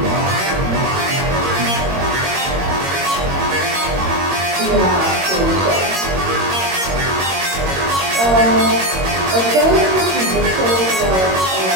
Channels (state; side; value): late; left; 22 ms